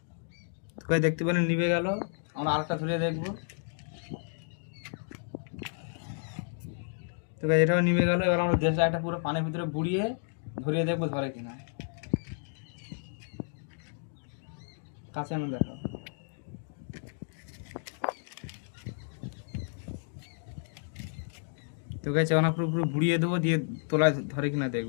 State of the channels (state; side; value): silent; right; digital silence